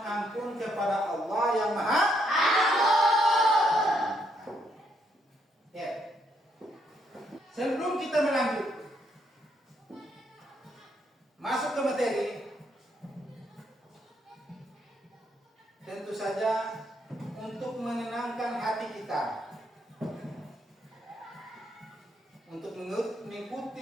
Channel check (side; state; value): both; normal; correlation 0.74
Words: ampun kepada Allah yang Maha Ampun. Ya. Sebelum kita melanjut masuk ke materi, tentu saja untuk menenangkan hati kita, untuk